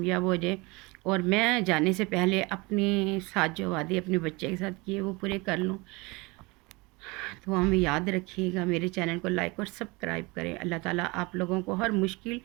ہو جائے، اور میں جانے سے پہلے اپنے ساتھ جو وعدے اپنے بچے کے ساتھ کیے وہ پورے کر لوں۔ دعا میں یاد رکھیے گا، میرے چینل کو لائک اور سبسکرائب کریں۔ اللہ تعالیٰ آپ لوگوں کو ہر مشکل،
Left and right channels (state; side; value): quieter; left; 25.4 dB